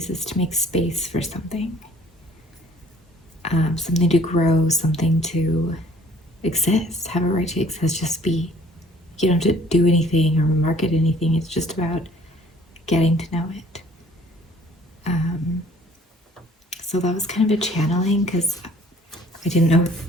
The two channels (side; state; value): both; normal; correlation 0.56